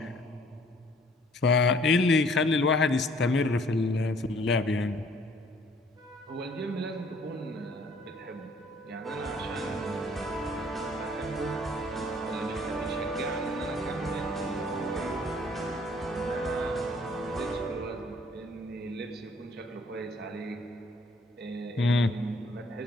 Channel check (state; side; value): normal; both; correlation 0.58